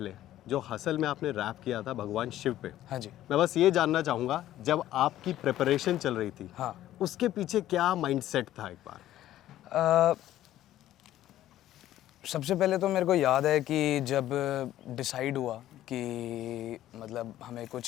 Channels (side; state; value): right; quieter; 13.3 dB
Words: जो हसल में आपने रैप किया था भगवान शिव पे, हाँ जी। मैं बस ये जानना चाहूँगा जब आपकी प्रिपरेशन चल रही थी हाँ। उसके पीछे क्या माइंडसेट था एक बार? अ, सबसे पहले तो मेरे को याद है कि जब डिसाइड हुआ कि मतलब हमें